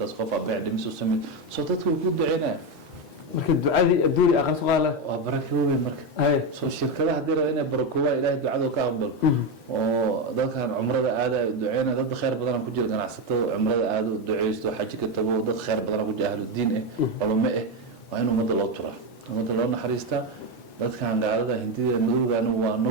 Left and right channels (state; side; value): normal; both; correlation 0.11